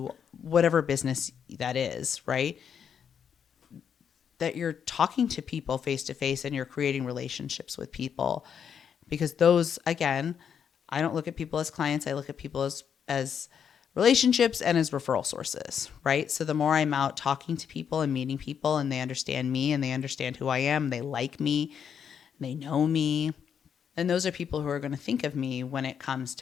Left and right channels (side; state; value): right; quieter; 7.8 dB